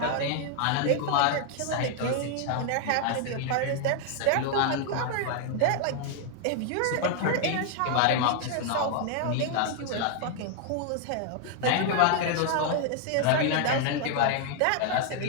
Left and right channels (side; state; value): both; different; correlation 0.00